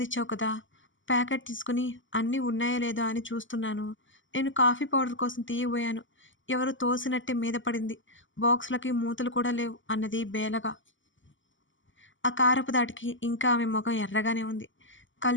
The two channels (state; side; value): late; right; 0.56 ms